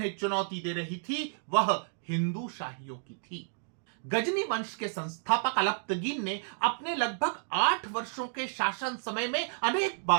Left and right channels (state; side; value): silent; left; digital silence